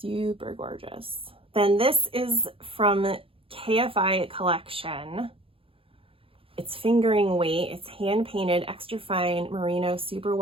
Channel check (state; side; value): late; left; 0.27 ms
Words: gorgeous. Then this is from KFI Collection. It's fingering weight. It's hand painted, extra fine merino